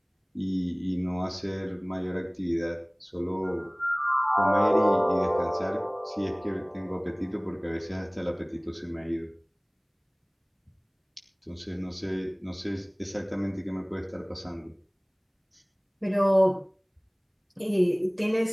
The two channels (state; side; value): identical; both; correlation 1.00